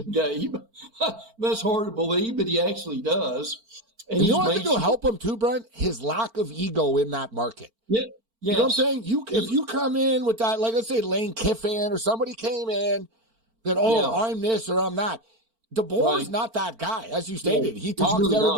Gabe. That's hard to believe, but he actually does. And you know what I think will help him too, Brent? His lack of ego in that market. Yeah. You know what I'm saying? If you come in with that, like let's say Lane Kiffin or somebody came in that, I'm this or I'm that. DeBoer's not that guy, as you stated. He talks really to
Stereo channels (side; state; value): left; late; 4.4 ms